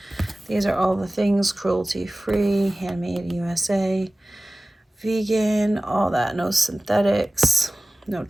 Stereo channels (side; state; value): both; normal; correlation 0.97